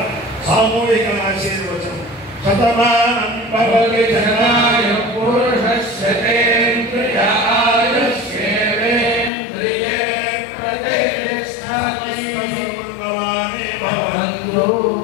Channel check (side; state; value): right; drops out; at 9.3 s